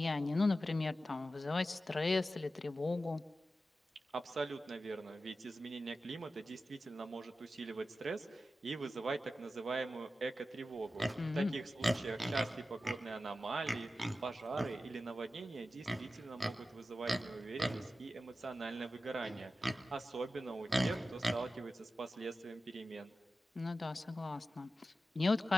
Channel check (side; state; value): both; normal; correlation 0.93